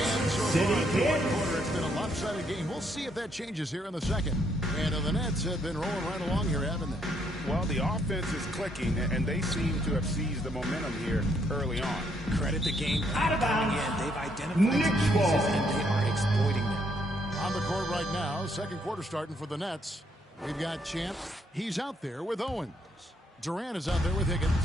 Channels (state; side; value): normal; both; correlation 0.72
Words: City Kid. It's been a lopsided game. We'll see if that changes here in the second. And the Nets have been rolling right along here, haven't they? Well, the offense is clicking, and they seem to have seized the momentum here early on. Credit the game Out of bounds. They've identified Knicks some ball. weaknesses, and they are exploiting them. On the court right now, second quarter starting for the Nets. We've got Champ. He's out there with Owens. Durant is out there with Higgins.